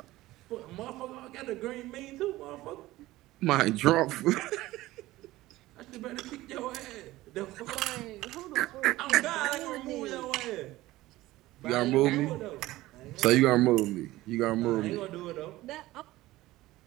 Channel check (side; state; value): left; quieter; 17.4 dB